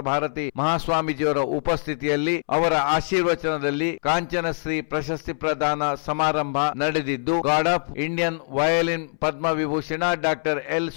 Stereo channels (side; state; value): right; silent; 63 dB below the other